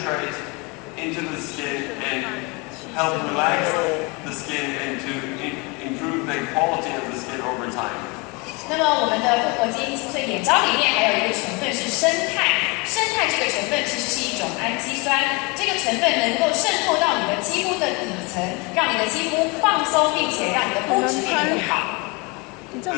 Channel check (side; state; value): right; quieter; 28.5 dB